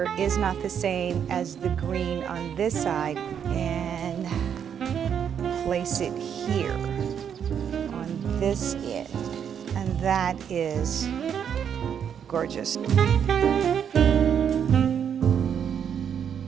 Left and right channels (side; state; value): left; quieter; 8.2 dB